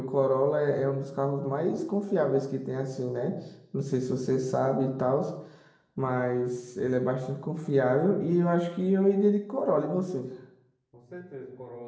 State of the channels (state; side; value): identical; both; correlation 1.00